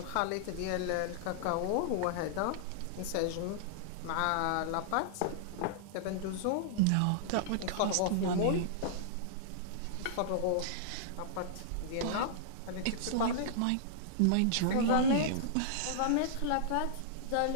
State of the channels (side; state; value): both; different; correlation -0.02